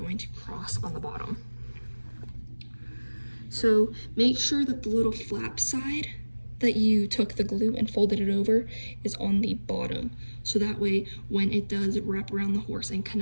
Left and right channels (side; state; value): both; inverted; correlation -1.00